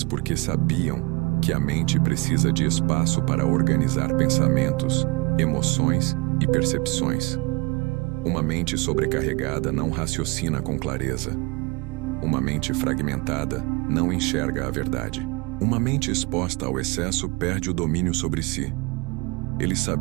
porque sabiam que a mente precisa de espaço para organizar pensamentos, emoções e percepções. Uma mente sobrecarregada não raciocina com clareza. Uma mente fragmentada não enxerga a verdade. Uma mente exposta ao excesso perde o domínio sobre si. Eles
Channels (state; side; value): quieter; left; 26.5 dB